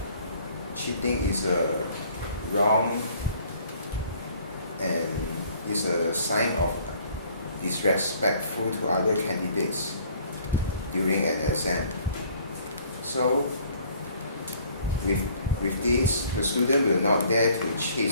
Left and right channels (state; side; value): inverted; both; correlation -0.57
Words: cheating is wrong and is a sign of disrespectful to other candidates during an exam. So with this, the student will not dare to